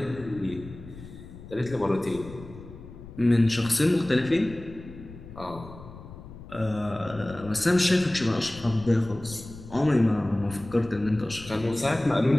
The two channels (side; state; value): left; noise; rumble, 16 dB below the sound